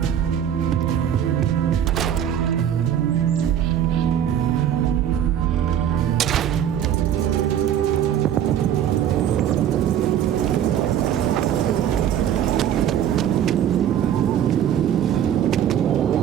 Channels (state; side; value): quieter; left; 10.0 dB